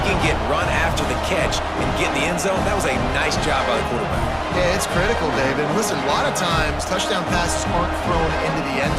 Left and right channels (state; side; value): identical; both; correlation 1.00